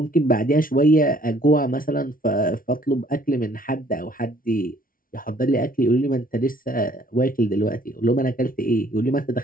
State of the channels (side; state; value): right; late; 0.41 ms